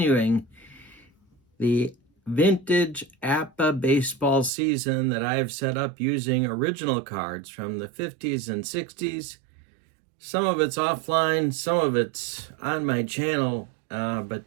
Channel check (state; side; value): drops out; left; at 4.5 s